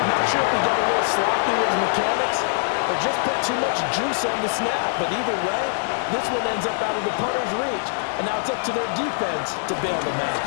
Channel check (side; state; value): right; silent; digital silence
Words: not sure if he got a little sloppy with his mechanics or just put too much juice on the snap, but either way, this one ends up out of the punter's reach, and now it's up to their defense to bail them out.